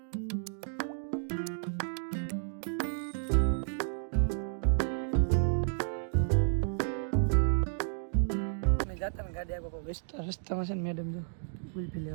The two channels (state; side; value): silent; left; digital silence